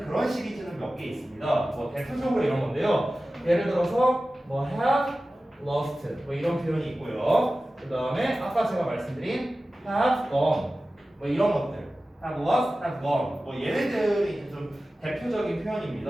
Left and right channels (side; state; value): both; normal; correlation 0.95